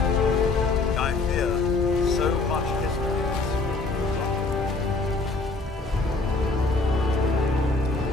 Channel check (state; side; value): quieter; right; 3.6 dB